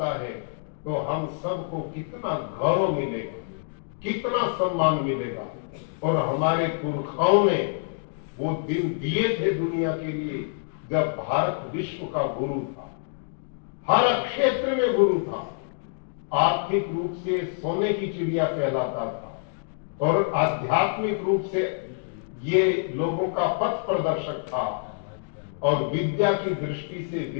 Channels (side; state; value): right; silent; digital silence